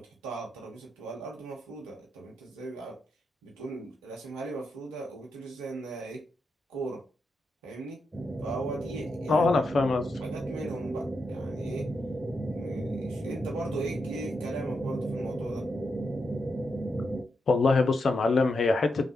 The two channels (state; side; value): normal; both; correlation 0.85